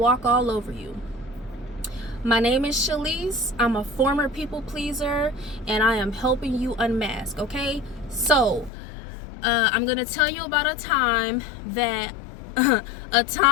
all over you. My name is Shalise. I'm a former people pleaser, and I am helping you unmask. Okay, so I'm gonna tell you about a time out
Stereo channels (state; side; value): drops out; right; at 8.7 s